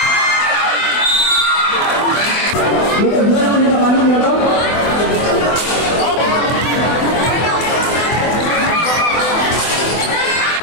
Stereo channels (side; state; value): right; late; 24 ms